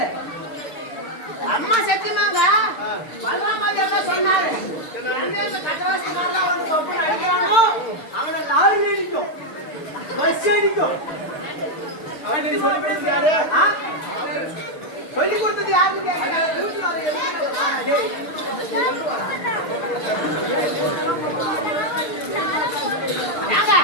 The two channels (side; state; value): right; late; 6.6 ms